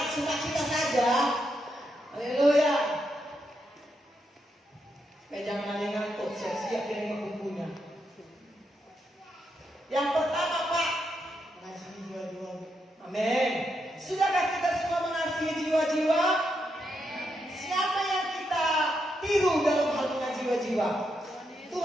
sukacita saja. Haleluya. Supaya jangan ada yang ngantuk, siap-siap dengan bukunya. Yang pertama Pak, mengasihi jiwa-jiwa. Amin. Sudahkah kita semua mengasihi jiwa-jiwa? Siapa yang kita tiru dalam hal mengasihi jiwa-jiwa?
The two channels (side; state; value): both; normal; correlation 0.82